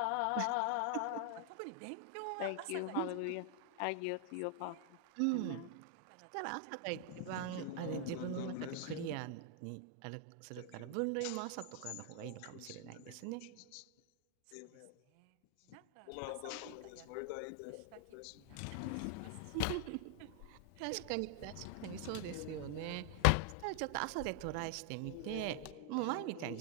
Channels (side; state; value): both; different; correlation 0.00